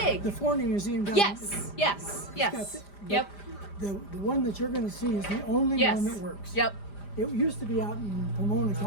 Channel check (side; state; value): right; late; 5.0 ms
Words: big? The Ford Museum. Down Yes, yes, got yes. the- Yep, The one that you're going to see is the only yes. one that works. Yep. It used to be out in Pomona,